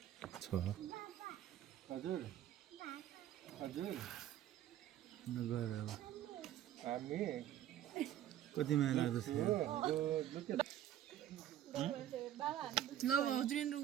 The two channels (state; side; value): quieter; left; 11.8 dB